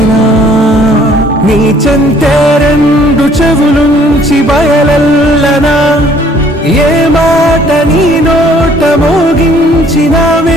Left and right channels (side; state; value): both; normal; correlation 0.59